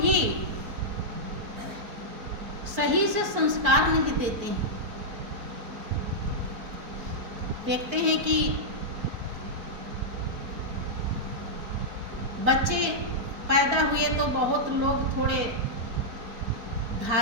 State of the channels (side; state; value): left; late; 4.5 ms